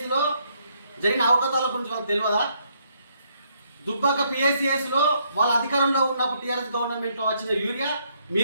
జరిగిన అవకతవకల గురించి వాళ్ళకి తెలియదా? దుబ్బాక పిఎస్సిఎస్లో వాళ్ళ అధికారంలో ఉన్నప్పుడు టీఆర్ఎస్ గవర్నమెంట్లో వచ్చిన యూరియా,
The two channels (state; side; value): inverted; both; correlation -0.72